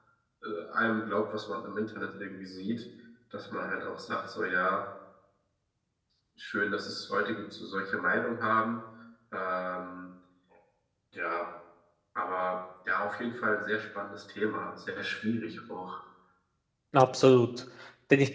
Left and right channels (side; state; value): both; identical; correlation 1.00